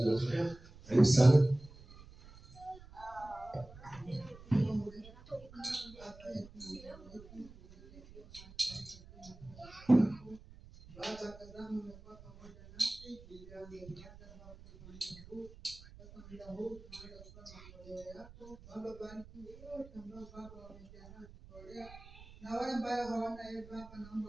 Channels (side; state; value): right; noise; rumble, 19 dB below the sound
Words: matoleo. Karibu sana. Baba, tazama umekuwa pamoja nasi, tulianza Baba kufanya huu. Sasa muda huu tunaanza kutoa matoleo yako. Baba, bariki wote ambao Baba wamejiandaa kutolea. Na wale ambao hawana Baba,